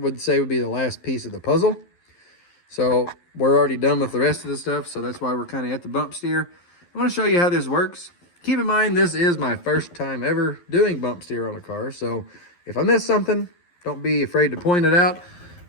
say, would be the last piece of the puzzle. So we're already done with the rest of the stuff, so that's why we're kind of at the bump steer. I want to show you how this works. Keep in mind, this is my first time ever doing bump steer on a car, so if I miss something, don't be afraid to point it out.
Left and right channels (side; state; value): right; late; 11 ms